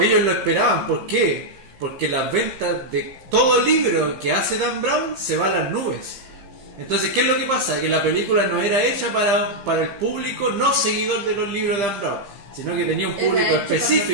lo esperaban. ¿Por qué? Porque las ventas de todo libro que hace Dan Brown se van a las nubes. Entonces, ¿qué es lo que pasa? Que la película no era hecha para el público no seguidor de los libros de Dan Brown, sino que tenía un público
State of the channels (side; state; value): left; late; 15 ms